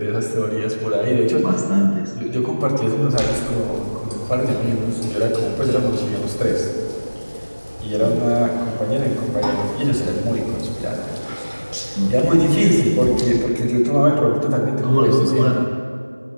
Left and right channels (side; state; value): both; inverted; correlation -1.00